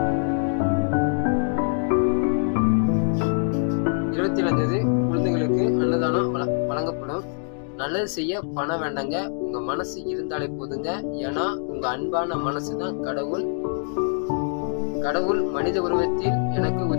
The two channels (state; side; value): silent; right; 62 dB below the other